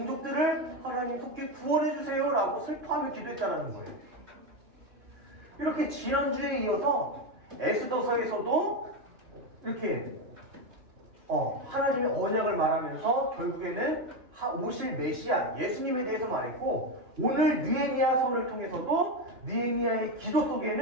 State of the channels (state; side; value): late; left; 2.9 ms